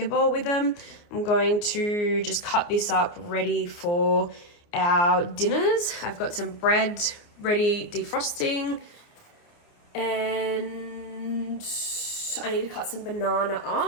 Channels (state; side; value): late; right; 29 ms